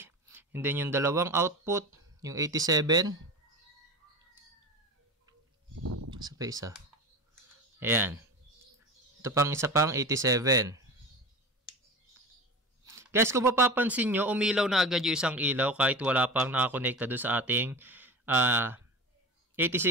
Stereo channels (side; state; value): both; normal; correlation 0.31